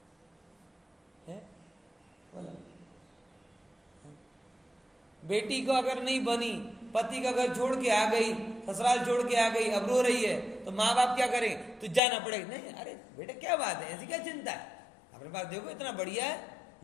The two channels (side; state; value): right; drops out; at 12.0 s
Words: बेटी को अगर नहीं बनी, पति का घर छोड़ के आ गई, ससुराल छोड़ के आ गई, अब रो रही है, तो माँ बाप क्या करें? तो जाना पड़ेगा। नहीं, अरे बेटा क्या बात है, ऐसी क्या चिंता है, अपने पास देखो इतना बढ़िया है,